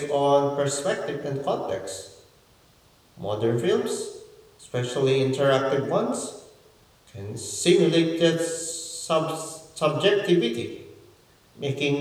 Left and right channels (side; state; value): both; identical; correlation 1.00